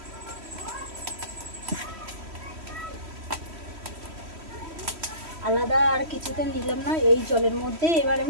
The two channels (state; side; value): late; left; 3.1 ms